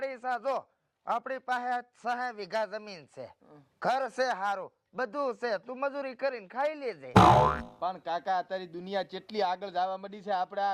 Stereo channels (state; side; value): identical; both; correlation 1.00